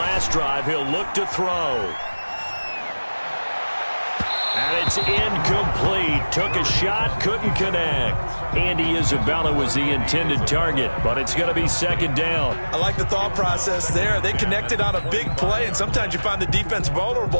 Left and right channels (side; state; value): both; inverted; correlation -1.00